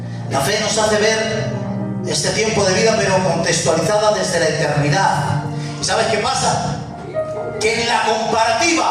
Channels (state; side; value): identical; both; correlation 1.00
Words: La fe nos hace ver este tiempo de vida, pero contextualizada desde la eternidad. ¿Y sabes qué pasa? Que en la